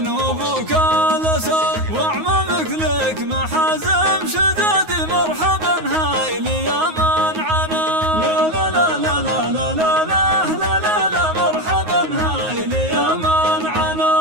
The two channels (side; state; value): left; late; 9.4 ms